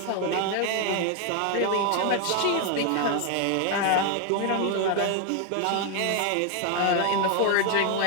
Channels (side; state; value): both; different; correlation 0.01